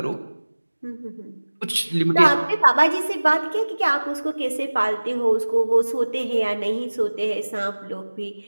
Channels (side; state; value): both; inverted; correlation -1.00